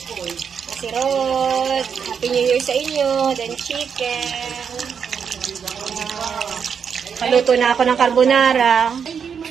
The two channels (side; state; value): left; quieter; 6.9 dB